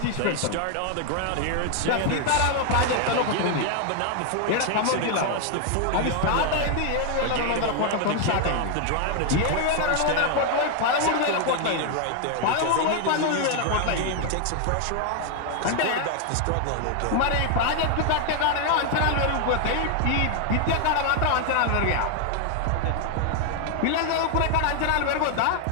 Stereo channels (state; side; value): different; both; correlation 0.00